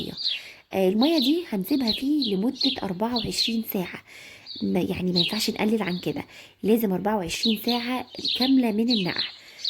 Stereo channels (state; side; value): identical; both; correlation 1.00